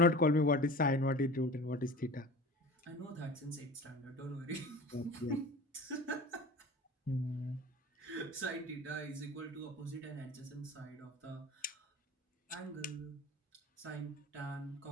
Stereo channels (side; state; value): both; normal; correlation 0.38